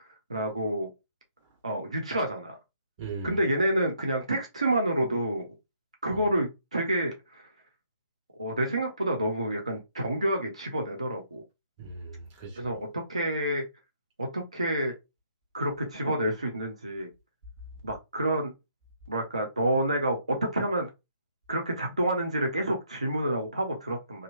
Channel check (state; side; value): inverted; both; correlation -0.70